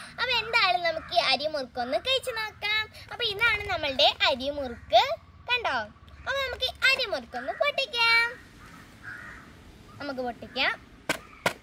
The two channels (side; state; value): both; identical; correlation 1.00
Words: അപ്പൊ എന്തായാലും നമുക്ക് ഈ അരിമുറുക്കൊന്ന് കഴിച്ചു നോക്കാം. അപ്പൊ ഇതാണ് നമ്മളുടെ അരിമുറുക്ക്, കണ്ടോ? അപ്പൊ നമുക്ക് അരിമുറുക്കൊന്ന് പൊട്ടിക്കാം.